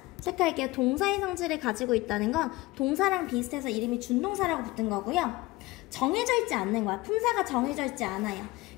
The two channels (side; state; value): right; quieter; 20.3 dB